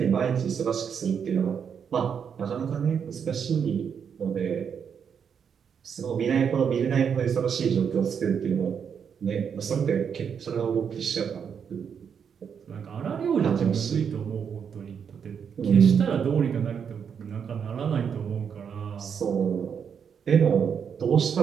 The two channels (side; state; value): left; quieter; 7.2 dB